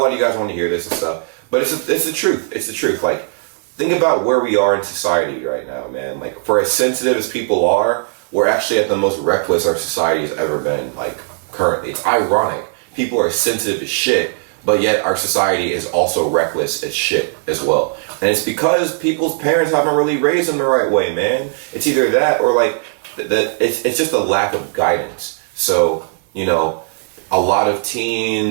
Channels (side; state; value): left; silent; digital silence